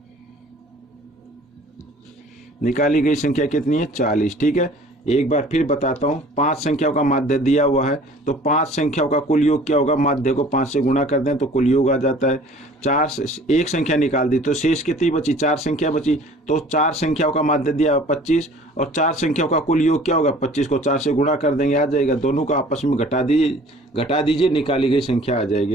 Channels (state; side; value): normal; both; correlation 0.50